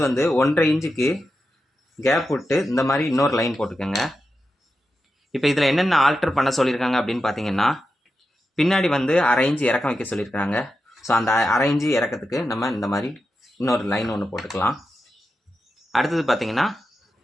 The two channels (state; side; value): normal; both; correlation 0.89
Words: வந்து 1.5 இன்ச்சுக்கு கேப் விட்டு இந்த மாதிரி இன்னொரு லைன் போட்டுக்கோங்க. இப்போ இதில் என்னென்ன ஆல்டர் பண்ண சொல்லியிருக்காங்க அப்படின்னு பார்த்தீங்கன்னா, பின்னாடி வந்து 1/2 இன்ச்சு இறக்கம் வைக்க சொல்லியிருக்காங்க. ஸோ அந்த 1/2 இன்ச்சு இறக்கத்துக்கு நம்ம இந்த மாதிரி இன்னொரு லைன் ஒன்று போட்டுக்கலாம். அடுத்தது பார்த்தீங்கன்னா,